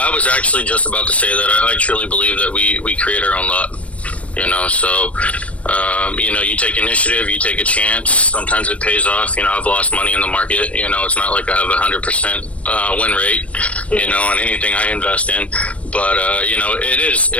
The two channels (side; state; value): right; late; 0.064 ms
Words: was actually just about to say that. I truly believe that we create our own luck. You know, so, you know, you take initiative, you take a chance. Sometimes it pays off. You know, I've lost money in the market. You know, it's not like I have 100% win rate, you know, on anything I invest in. But, you know,